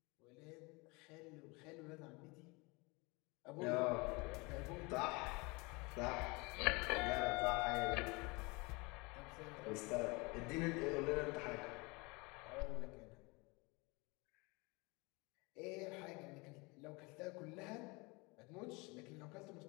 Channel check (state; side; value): quieter; right; 26.7 dB